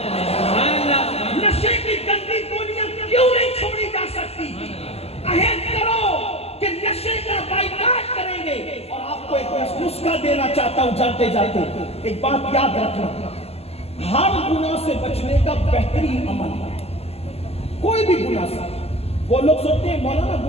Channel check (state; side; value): late; right; 0.29 ms